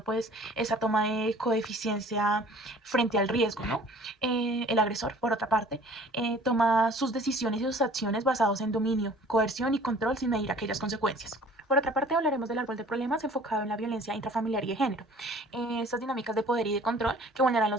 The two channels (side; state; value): both; normal; correlation 0.50